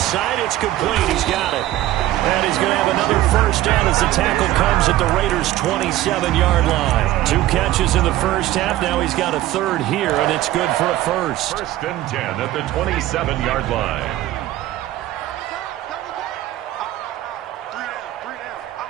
side, it's complete. He's got it. And he's going to have another first down as the tackle comes at the Raiders' 27-yard line. 2 catches in the first half. Now he's got a third here, and it's good for a first. First and 10 at the 27-yard line.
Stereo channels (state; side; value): quieter; left; 15.0 dB